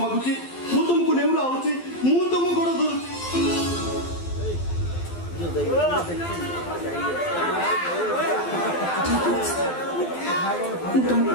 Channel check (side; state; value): right; late; 12 ms